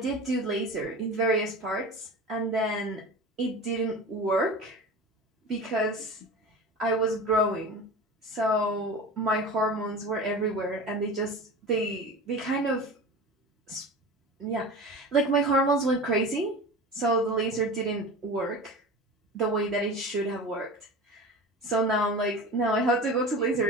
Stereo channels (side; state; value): both; normal; correlation 0.33